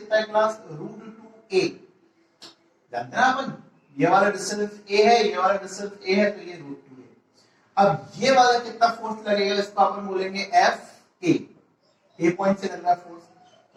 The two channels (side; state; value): both; identical; correlation 1.00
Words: है क्लास? √2a। जानते हैं ना अपन, ये वाला डिस्टेंस a है, ये वाला डिस्टेंस a है, तो ये √2a। अब ये वाला कितना फोर्स लगेगा, इसको अपन बोलेंगे एफ ए पॉइंट से लग रहा फोर्स।